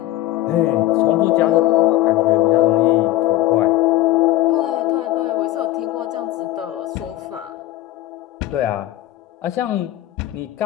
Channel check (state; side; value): quieter; right; 15.6 dB